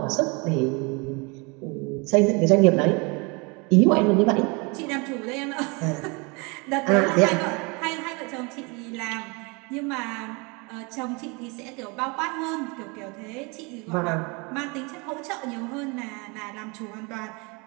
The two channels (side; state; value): left; quieter; 29.5 dB